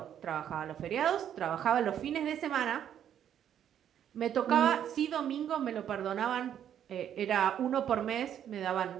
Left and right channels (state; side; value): quieter; left; 9.7 dB